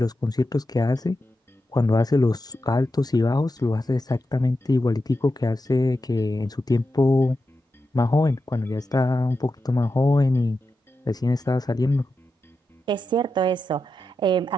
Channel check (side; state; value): both; normal; correlation 0.89